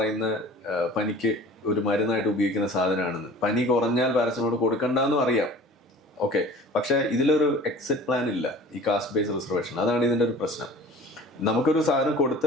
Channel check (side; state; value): both; normal; correlation 0.44